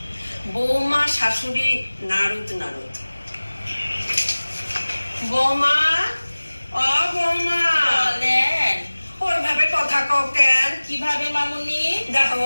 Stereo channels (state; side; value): inverted; both; correlation -1.00